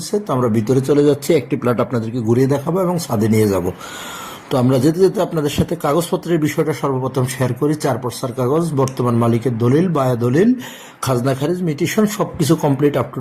তো আমরা ভিতরে চলে যাচ্ছি, একটি প্লট আপনাদেরকে ঘুরিয়ে দেখাবো এবং ছাদে নিয়ে যাব। তো আমরা যেতে যেতে আপনাদের সাথে কাগজপত্রের বিষয়টা সর্বপ্রথম শেয়ার করি। 4 পর্সার কাগজ, বর্তমান মালিকের দলিল, বায়া দলিল, খাজনা খারিজ, মিটিশন সবকিছু কমপ্লিট আপ টু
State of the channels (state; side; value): identical; both; correlation 1.00